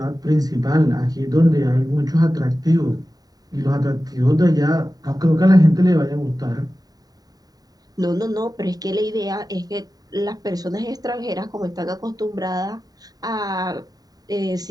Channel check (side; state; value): left; late; 0.18 ms